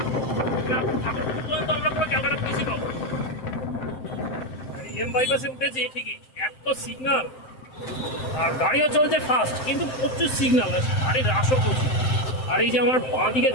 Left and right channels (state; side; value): late; right; 7.7 ms